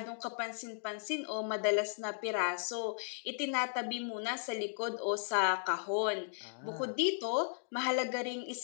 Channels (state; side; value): silent; right; digital silence